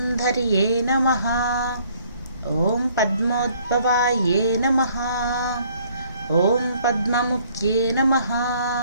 నమః, ఓం పద్మోద్భవాయే నమః, ఓం పద్మముఖ్యే నమః,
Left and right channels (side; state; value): both; inverted; correlation -0.62